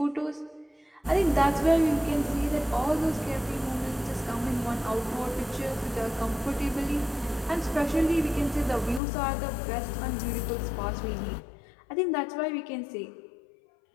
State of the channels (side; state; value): right; drops out; at 9.0 s